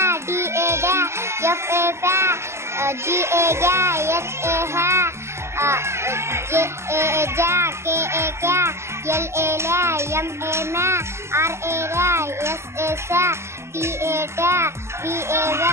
D A dare, F A fair, G A guy, H A hair, J A jack, K A cat, L A lay, M A man, R A ray, S A sa, T A tear, V A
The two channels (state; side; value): late; left; 0.13 ms